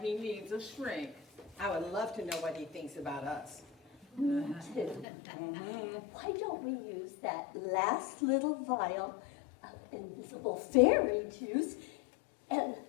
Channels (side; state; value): right; drops out; at 5.1 s